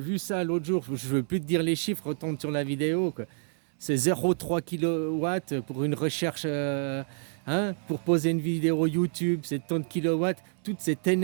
ça l'autre jour, je ne veux plus te dire les chiffres, retourne sur la vidéo, quoi. C'est 0,3 kW pour une recherche, hein, pour poser une vidéo YouTube, c'est tant de kilowatts, toute cette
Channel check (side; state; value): left; silent; digital silence